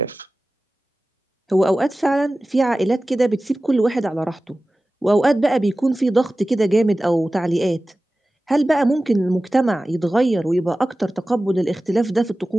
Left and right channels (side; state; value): both; normal; correlation 0.96